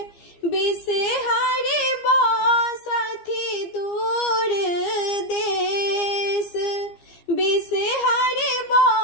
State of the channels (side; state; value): right; late; 15 ms